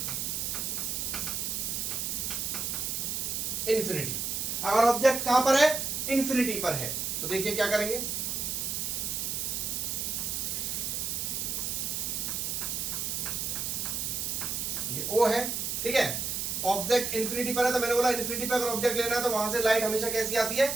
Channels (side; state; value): right; noise; hiss, 1 dB below the sound